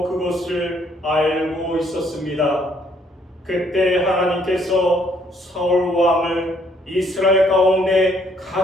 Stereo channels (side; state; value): both; normal; correlation 0.66